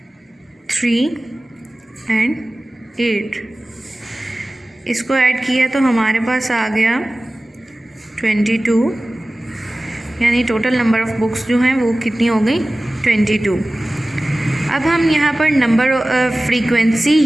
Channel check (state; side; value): normal; both; correlation 0.97